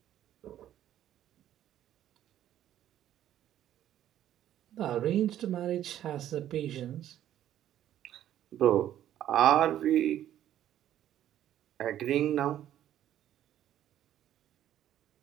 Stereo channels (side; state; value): left; quieter; 11.8 dB